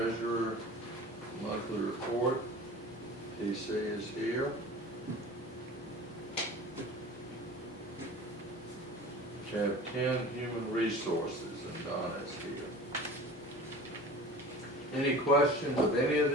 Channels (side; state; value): both; normal; correlation 0.39